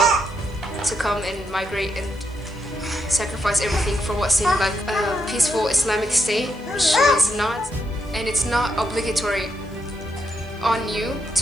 to come and migrate and sacrifice everything for what seemed like a peaceful Islamic state, which was not. And it's not obligatory on you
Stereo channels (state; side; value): noise; left; hiss, 29 dB below the sound